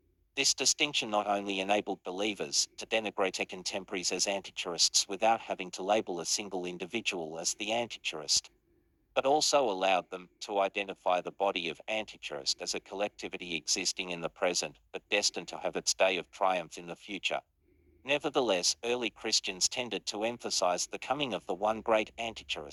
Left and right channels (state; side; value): identical; both; correlation 1.00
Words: This distinction not only enabled believers to denigrate their contemporaries as Antichurists without having to label a single individual as the Antichurist, but also allowed them to identify the body of Antichurist as a collectivity existing in the present, but destined to have its day of triumph in the future. Nevertheless, early Christians tended to emphasize the coming of the one great